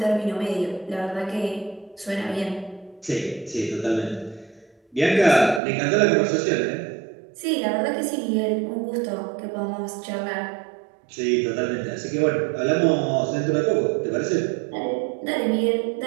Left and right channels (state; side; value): drops out; left; at 5.6 s